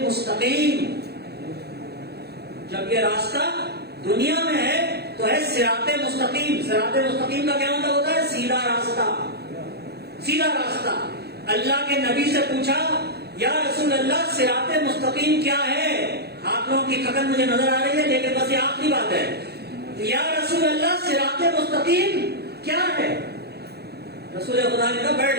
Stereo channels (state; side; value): late; left; 0.47 ms